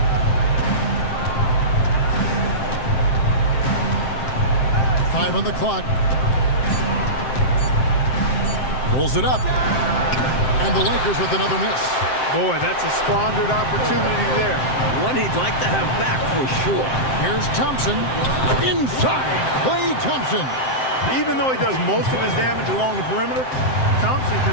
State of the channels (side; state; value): right; late; 7.7 ms